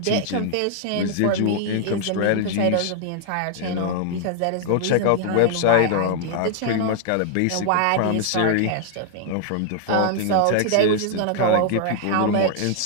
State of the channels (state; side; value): different; both; correlation 0.00